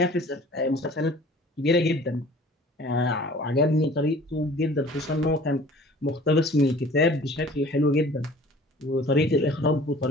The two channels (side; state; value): both; normal; correlation 0.48